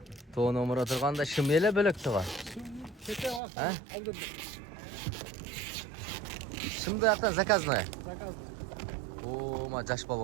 Toğun omur oturganda şımyele bölök tuğa. Çete var. Ha? Aldırdım. Şimdi yaktan zakaz mı? Zakaz. Oo, ma jaş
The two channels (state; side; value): drops out; left; at 3.4 s